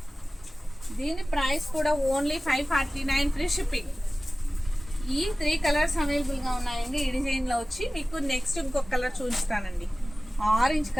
దీని ప్రైస్ కూడా ఓన్లీ 549 ఫ్రీ షిప్పింగ్. ఈ 3 కలర్స్ అవైలబుల్గా ఉన్నాయండి. ఈ డిజైన్లో వచ్చి మీకు నెక్స్ట్ ఇంకొక కలర్ చూపిస్తానండి. Orange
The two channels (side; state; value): both; normal; correlation 0.97